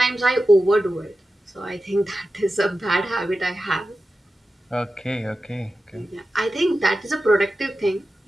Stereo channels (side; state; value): both; normal; correlation 0.93